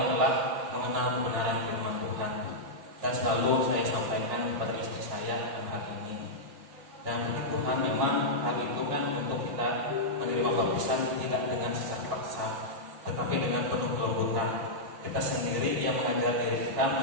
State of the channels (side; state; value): left; late; 6.2 ms